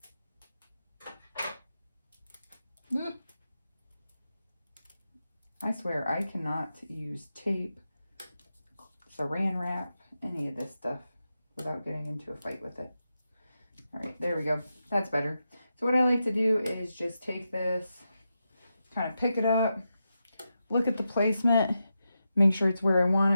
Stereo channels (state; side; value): inverted; both; correlation -0.88